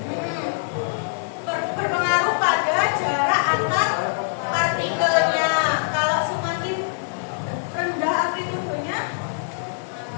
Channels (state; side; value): silent; right; 62 dB below the other